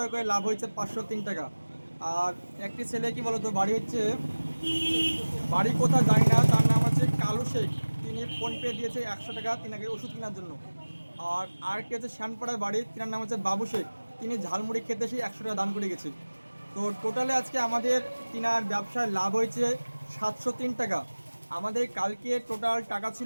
করে লাভ হয়েছে 503 টাকা। আর একটি ছেলে কি বলতো, বাড়ি হচ্ছে, বাড়ি কোথাও জানি না, তার নাম হচ্ছে কালু শেখ। তিনি ফোনপে দিয়েছে 100 টাকা তিনাকে ওষুধ কেনার জন্য। আর আরেকটি হচ্ছে শ্যানপাড়ার বাড়ি, তিনার নাম হচ্ছে বাবু শেখ। তিনি ঝালমুড়ি খেতে এসে 100 টাকা দান করে গেছে। তো টোটালে আজকে আমাদের তিনার ব্যবসায় লাভ হয়েছে 703 টাকা। আমাদের কালকে টোটাল টাকা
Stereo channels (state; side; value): inverted; both; correlation -1.00